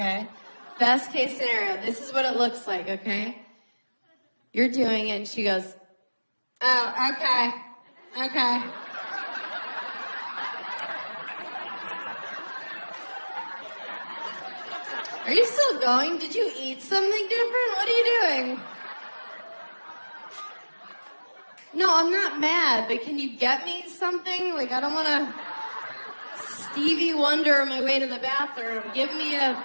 Best case scenario, this is what it looks like, okay? You're doing it and she goes, oh, okay. Are you still going? Did you eat something different? What are you doing? No, I'm not mad, but can you get me something? Like, I don't want to Stevie Wonder on my way to the bathroom. Give me a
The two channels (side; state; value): both; inverted; correlation -1.00